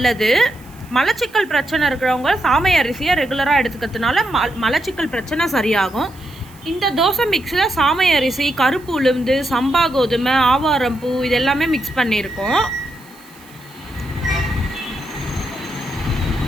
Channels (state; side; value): noise; right; hiss, 26 dB below the sound